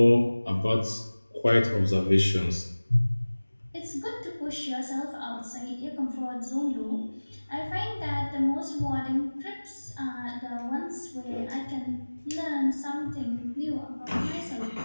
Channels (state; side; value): inverted; both; correlation -1.00